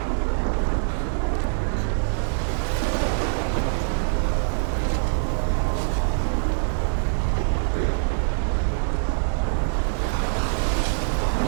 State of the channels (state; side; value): silent; left; digital silence